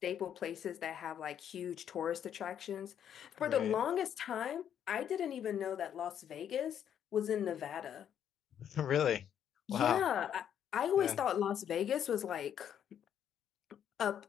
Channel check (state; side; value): quieter; right; 9.3 dB